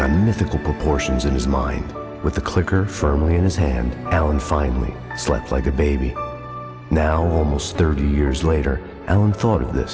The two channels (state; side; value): identical; both; correlation 1.00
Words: on mythical proportions in his mind. With the clicker firmly in his hand, Alan finally slept like a baby. Now, almost 30 years later, Alan thought of